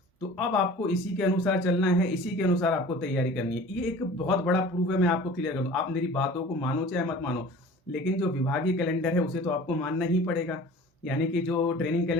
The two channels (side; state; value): both; normal; correlation 0.43